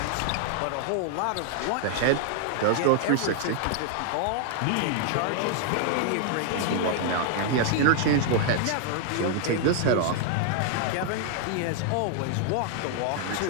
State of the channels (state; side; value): different; both; correlation 0.00